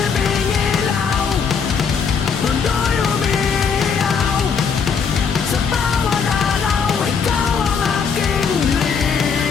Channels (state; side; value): quieter; right; 6.1 dB